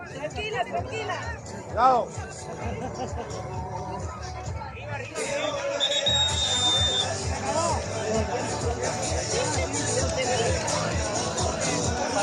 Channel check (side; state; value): both; identical; correlation 1.00